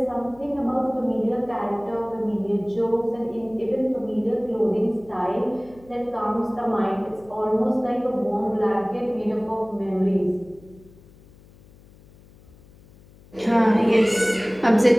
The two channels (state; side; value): noise; left; hum, 25 dB below the sound